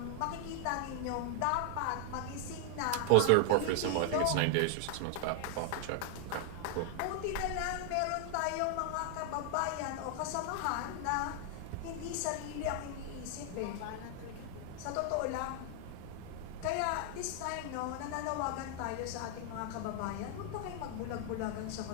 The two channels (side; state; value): both; different; correlation 0.00